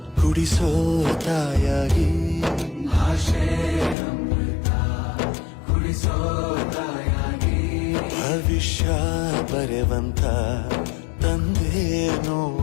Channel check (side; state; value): right; drops out; at 4.0 s